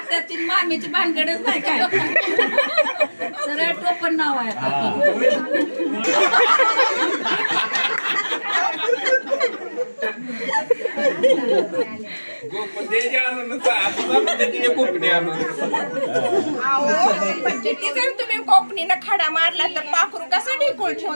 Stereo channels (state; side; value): inverted; both; correlation -1.00